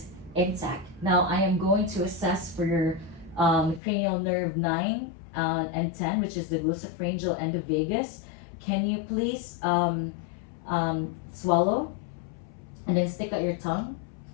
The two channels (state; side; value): drops out; right; at 3.8 s